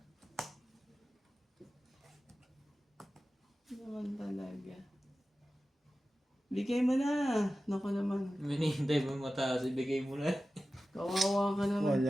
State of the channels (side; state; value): both; normal; correlation 0.95